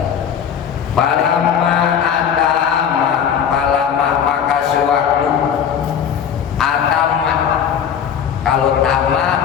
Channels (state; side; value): quieter; right; 8.1 dB